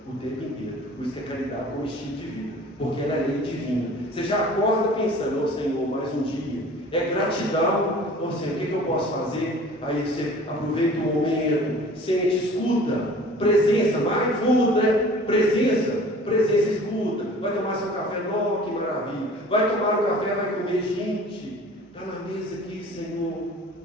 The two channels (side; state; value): both; normal; correlation 0.46